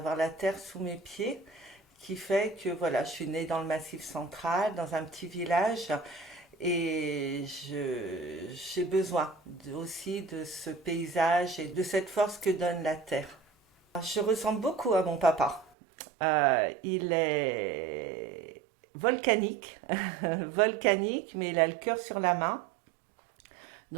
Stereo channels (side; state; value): left; drops out; at 15.7 s